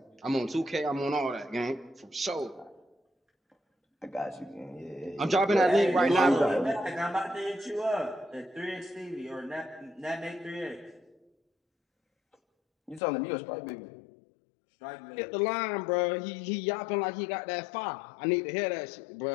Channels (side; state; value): right; drops out; at 13.0 s